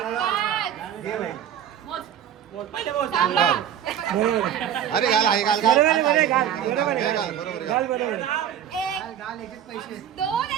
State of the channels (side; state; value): left; quieter; 9.8 dB